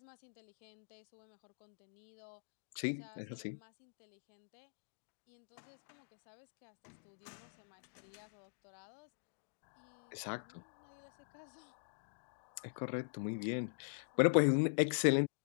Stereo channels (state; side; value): silent; right; digital silence